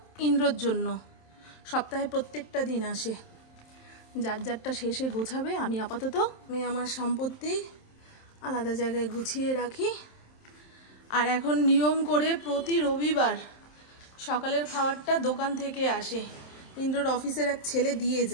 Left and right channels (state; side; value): late; right; 27 ms